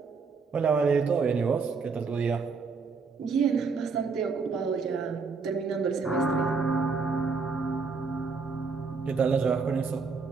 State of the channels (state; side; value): quieter; left; 4.9 dB